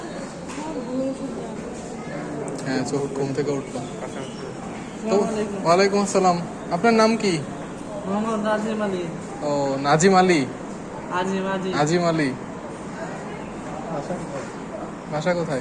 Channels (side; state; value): both; identical; correlation 1.00